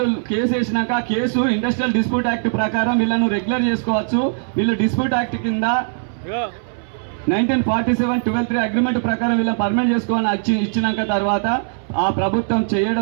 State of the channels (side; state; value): left; silent; 66 dB below the other